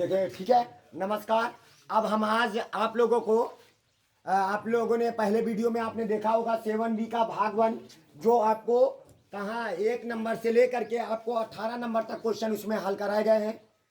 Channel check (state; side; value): identical; both; correlation 1.00